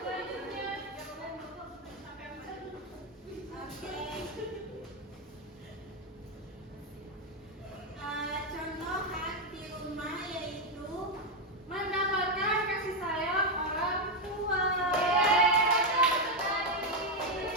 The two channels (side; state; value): both; normal; correlation 0.05